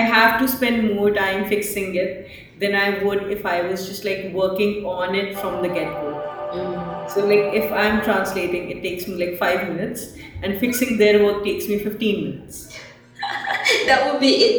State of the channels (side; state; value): both; identical; correlation 1.00